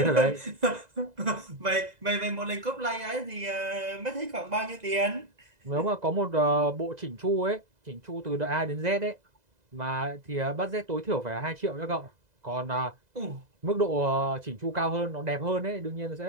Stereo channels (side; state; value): left; late; 2.0 ms